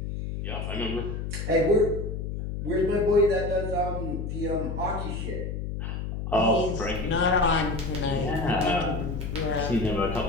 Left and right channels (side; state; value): left; noise; hum, 4 dB below the sound